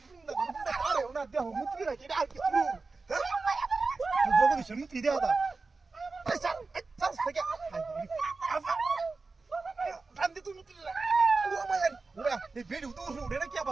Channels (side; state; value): left; quieter; 3.9 dB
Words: আরে ওনা দেহ মুত্রি রাখি আর কিছু জগদীশ মুত্রি দেহ দা চল থেকে কান্দে তুই মুত্রি ও মায়ের ওরা এই বেটি তো উড়ে না কি